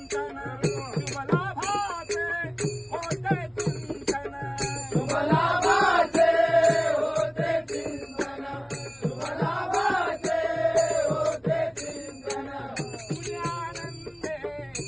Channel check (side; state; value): both; identical; correlation 1.00